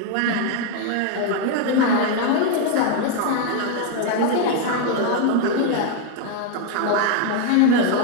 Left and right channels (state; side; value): different; both; correlation 0.01